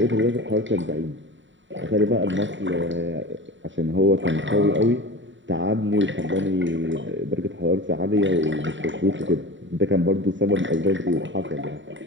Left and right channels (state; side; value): late; left; 0.54 ms